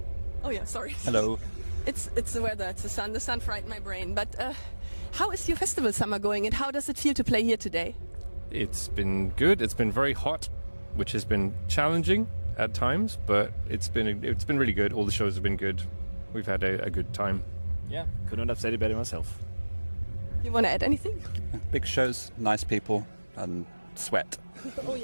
Oh yeah, sorry. Hello. It's the weather, it's the sun. The sun frightened my brain. But how is your festival summer going, and how does it feel to play here today? It's been good. It's been very hot, which has been challenging at times, but it's been really good. All the shows have been good. We've had a good time. Yeah, couldn't have said it better myself. You want to add anything? Big shows, nice people, and sweat. Oh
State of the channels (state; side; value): inverted; both; correlation -1.00